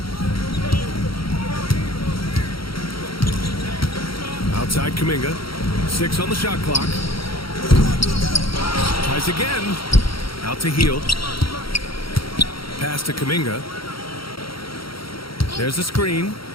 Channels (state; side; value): late; right; 0.74 ms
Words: Outside Kuminga. 6 on the shot clock. Tries again. Out to Hield. Pass to Kuminga. There's the screen.